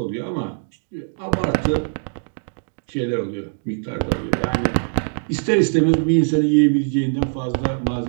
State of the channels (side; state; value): left; silent; digital silence